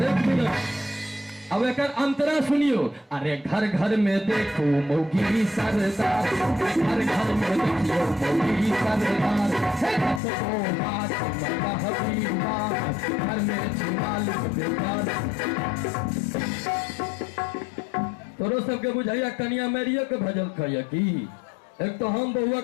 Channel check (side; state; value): right; drops out; at 10.2 s